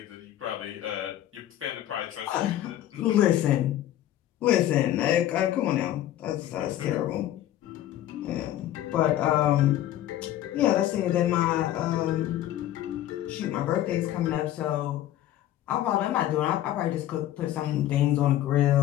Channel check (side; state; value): right; quieter; 12.9 dB